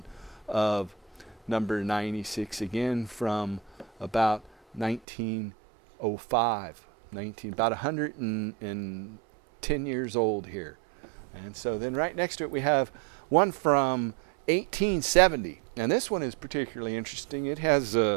of number 96, again from about 1905. About 110 years old here. And so then right next to it we have one from 1870. And this one is particularly interesting. It has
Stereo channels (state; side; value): drops out; left; at 5.0 s